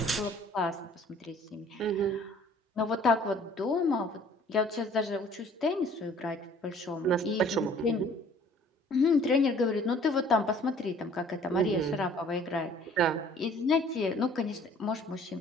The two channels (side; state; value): both; normal; correlation 0.54